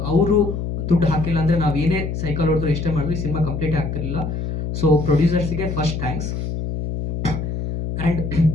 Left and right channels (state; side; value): noise; left; hum, 4 dB below the sound